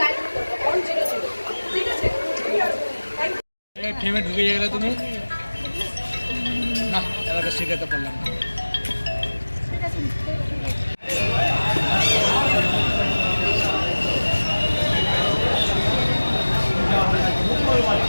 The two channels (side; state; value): both; inverted; correlation -1.00